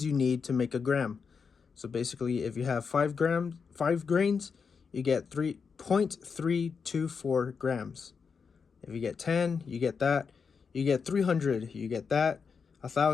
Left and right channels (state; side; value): quieter; right; 5.7 dB